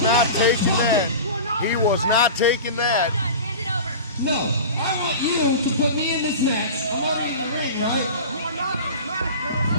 not taking that. He was not taking that. Hand it over. No, I want you to put me in this match. I'm already in the ring, right?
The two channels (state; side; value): inverted; both; correlation -0.33